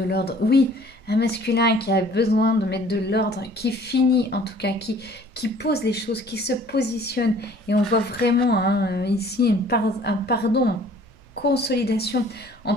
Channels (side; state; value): right; noise; rumble, 26 dB below the sound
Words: l'ordre. Oui, un masculin qui a besoin de mettre de l'ordre, qui finit en tout cas, qui pose les choses, qui se positionne. Et on voit vraiment hein, ici un pardon, une consolidation. En